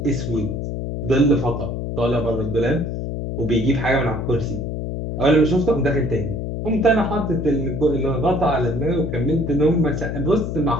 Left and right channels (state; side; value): noise; left; hum, 4 dB below the sound